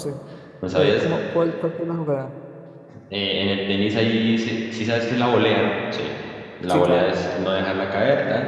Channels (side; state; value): both; identical; correlation 1.00